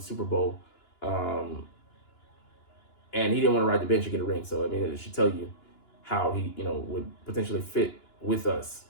Bowl, and he didn't want to ride the bench and get a ring. So I mean, it should tell you how he would potentially fit with us,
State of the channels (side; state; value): right; late; 2.9 ms